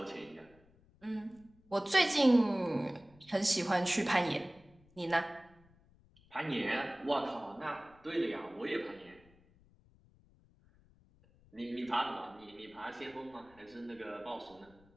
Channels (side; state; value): left; noise; rumble, 28 dB below the sound